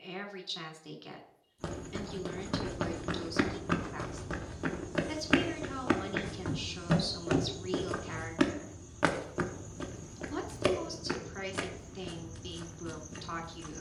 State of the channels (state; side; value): identical; both; correlation 1.00